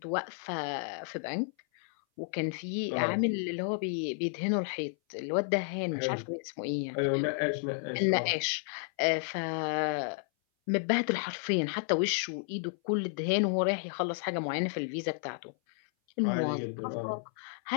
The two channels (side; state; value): right; silent; 56 dB below the other